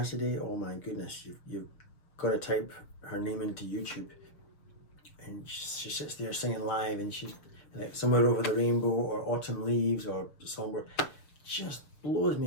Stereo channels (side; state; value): right; late; 6.7 ms